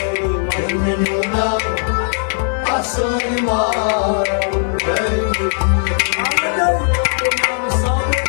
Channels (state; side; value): silent; right; digital silence